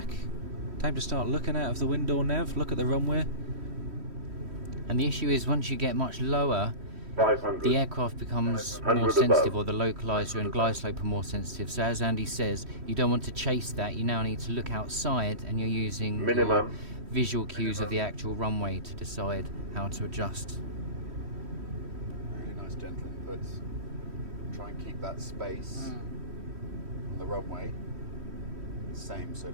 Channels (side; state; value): left; late; 3.1 ms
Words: Time to start looking out of the window, Nev. Look at the runway. And the issue is once you get much lower, 500. the aircraft becomes 100 more above. sensitive, or the localizer and glide slope are more sensitive. So as Andy says, you don't want to chase that. You now need to look outside, and you're using your Minimum. visual cues of the actual runway to decide how to adjust. Really nice gentle inputs. Try and keep that space on the runway the same. So